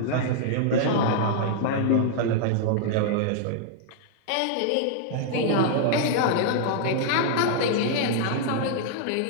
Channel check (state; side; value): different; both; correlation -0.01